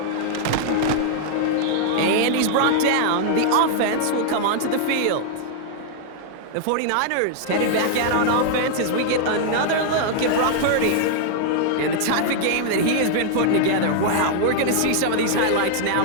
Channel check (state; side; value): different; both; correlation -0.01